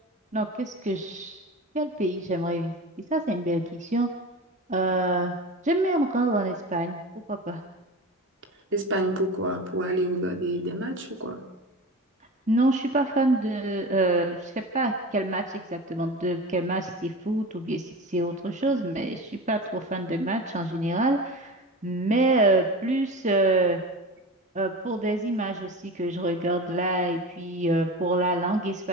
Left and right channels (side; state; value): both; normal; correlation 0.30